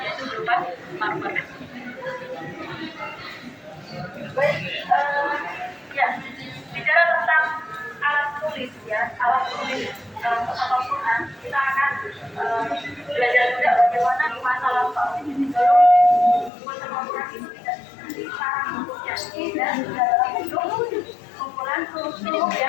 yaitu berupa marmer. Baik, ya, bicara tentang alat tulis ya, alat tulis dalam Al-Quran, kita akan belajar juga bagaimana di masa lampau sebelum Musaf Al-Quran itu tidak sekarang bentuknya dan dalam bentuk kumpulan huruf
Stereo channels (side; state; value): right; drops out; at 16.5 s